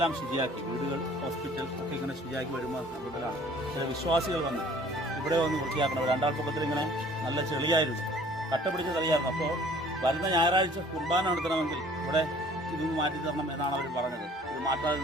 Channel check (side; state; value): both; normal; correlation 0.53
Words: ശുചിയാക്കി, വീടുകൾ, ഹോസ്പിറ്റൽ ഒക്കെ ഇങ്ങനെ ശുചിയാക്കി വരുമ്പോൾ കൂടുതലാണ് ചില വിശ്വാസികൾ വന്ന് ഇവിടെ വന്ന് വൃത്തിയാക്കണം. രണ്ടാൾപ്പൊക്കത്തിൽ ഇങ്ങനെ നല്ല ചെളിയായിരുന്നു, കട്ട പിടിച്ച ചെളിയായിരുന്നു. അപ്പോൾ വരുന്ന ഞായറാഴ്ച കുർബാന നടത്തണമെങ്കിൽ ഇവിടെ ഇതൊന്ന് മാറ്റി തരണം എന്നാണ് അവർ പറഞ്ഞത്. ഇത് മാറ്റാതെ